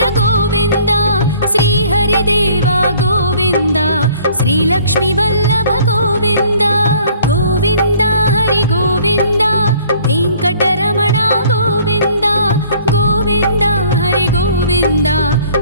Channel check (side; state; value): both; inverted; correlation -0.56